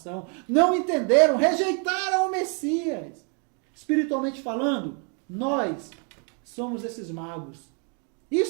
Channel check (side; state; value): left; quieter; 38.6 dB